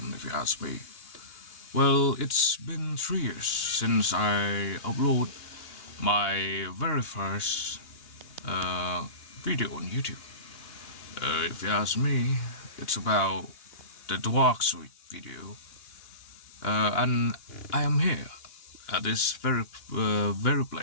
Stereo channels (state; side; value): late; right; 2.8 ms